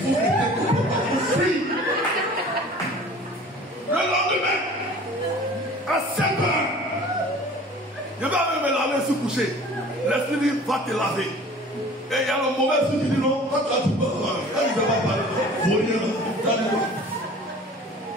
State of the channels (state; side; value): normal; both; correlation 0.45